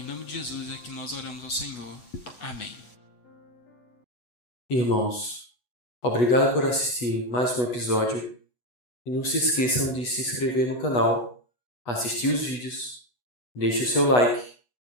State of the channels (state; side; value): late; right; 8.2 ms